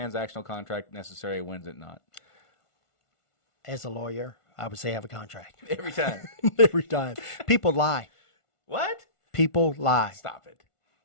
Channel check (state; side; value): late; right; 1.5 ms